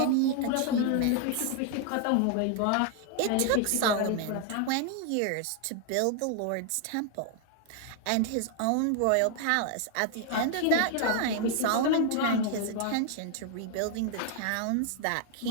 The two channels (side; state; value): both; different; correlation 0.00